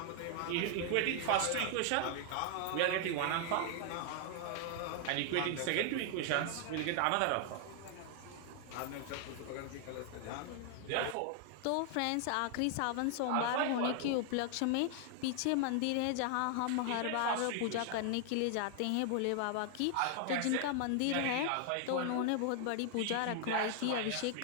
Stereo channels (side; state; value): both; different; correlation 0.00